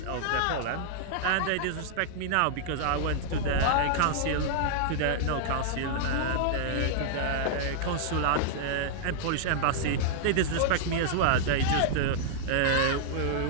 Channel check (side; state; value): both; different; correlation -0.01